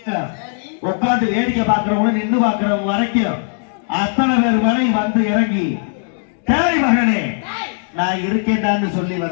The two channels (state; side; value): silent; right; 62 dB below the other